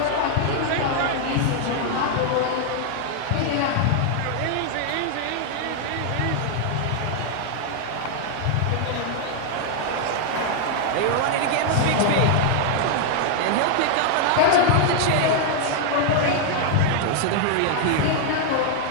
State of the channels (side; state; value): both; different; correlation 0.00